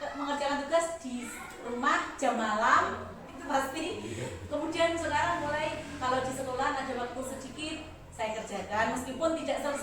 mengerjakan tugas di rumah jam malam itu pasti. Kemudian sekarang mulai kalau di sekolah ada waktu sedikit saya kerjakan, meskipun tidak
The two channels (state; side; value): identical; both; correlation 1.00